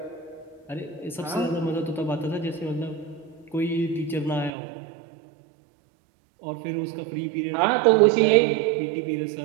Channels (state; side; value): drops out; left; at 4.5 s